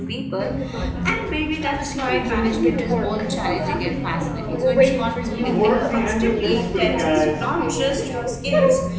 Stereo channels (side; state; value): both; identical; correlation 1.00